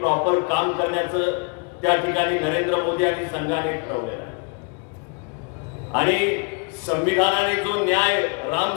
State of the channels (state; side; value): quieter; right; 35.0 dB